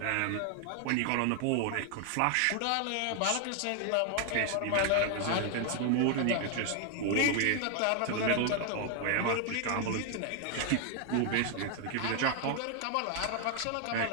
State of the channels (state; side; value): different; both; correlation 0.00